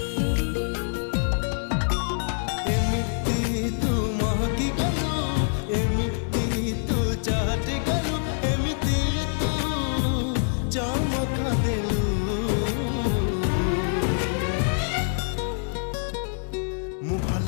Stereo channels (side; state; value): right; silent; 61 dB below the other